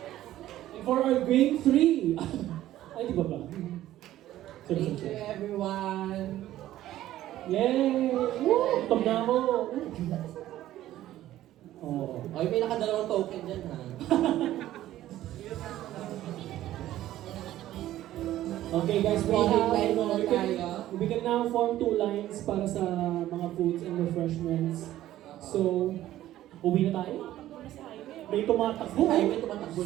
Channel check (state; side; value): quieter; left; 13.8 dB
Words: For our game 3. Ay, di ba ba? Thank you everyone. Yay! Woo! Tom na mo! Oh. Okay, may nakadalawang token dyan ha. Okay guys, we can now form 2 lines para sa mga foods and refreshments. So, uwi na tayo? May tumatakbo. Ay, may tumatakbo